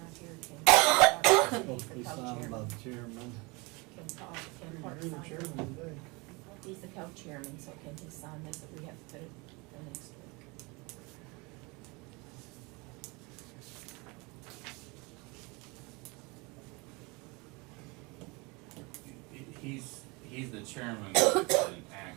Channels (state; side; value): quieter; left; 26.8 dB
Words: here, can. Supposed to be signed by the chairman. Can Paul, can You're Park the sign chairman it? today. He's the co-chairman, so can he sign this, if we have to put it for next week? He's the chairman of an